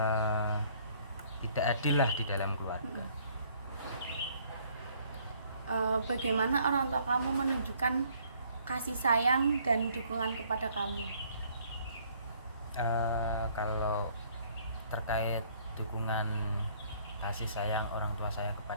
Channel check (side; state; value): both; inverted; correlation -0.61